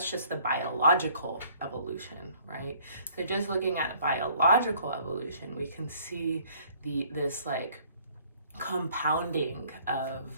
just the biological evolution, right? So just looking at biological evolution, we can see this like compounding of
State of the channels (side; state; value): both; inverted; correlation -0.58